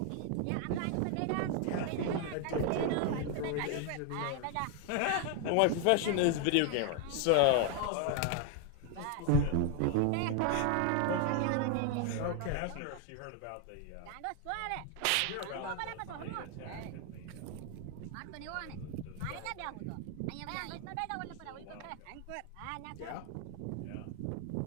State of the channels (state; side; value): different; both; correlation 0.01